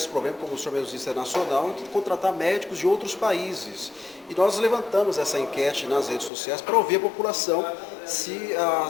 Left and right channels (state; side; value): drops out; right; at 6.3 s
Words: problema, como o senhor mesmo disse, é nacional, de contratar médicos de outros países. E nós levantamos essa enquete nas redes sociais para ouvir a população se